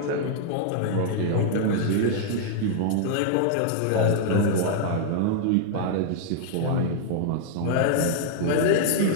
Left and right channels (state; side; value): different; both; correlation -0.01